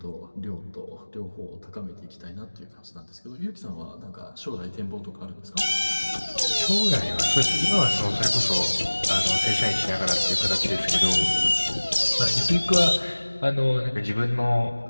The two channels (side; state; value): both; inverted; correlation -1.00